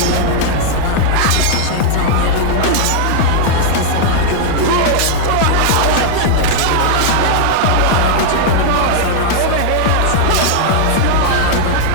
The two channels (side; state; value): both; different; correlation -0.01